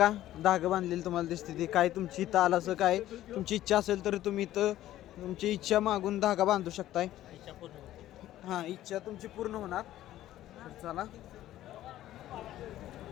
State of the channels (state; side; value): quieter; right; 13.7 dB